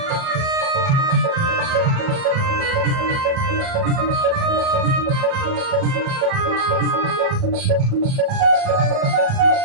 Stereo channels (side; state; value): left; late; 37 ms